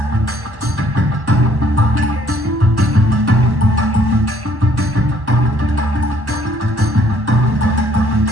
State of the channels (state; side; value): late; left; 1.2 ms